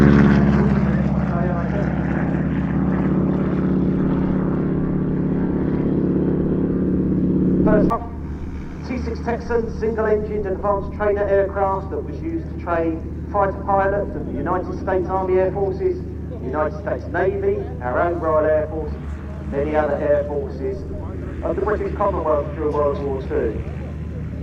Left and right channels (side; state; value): both; identical; correlation 1.00